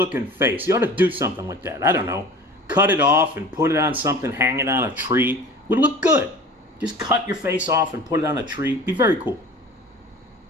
face. You ought to do something with that. I don't know. Cut it off and put it on something, hang it on a tree. Would look good. Just cut your face off and put it on a tree. Be very cool.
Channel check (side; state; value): both; normal; correlation 0.41